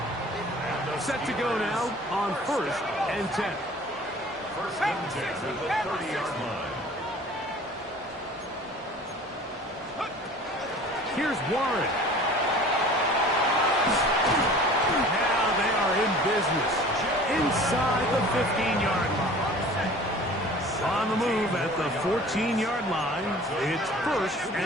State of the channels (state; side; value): normal; both; correlation 0.45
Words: Set to go now on 1st and 10. 1st and 10 at the 30-yard line. Here's Warren. Now they are in business inside the 15-yard line. On On the move at the 14-yard line. It's 1st